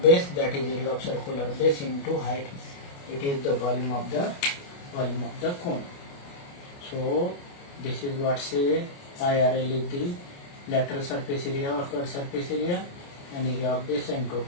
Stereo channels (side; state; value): right; late; 29 ms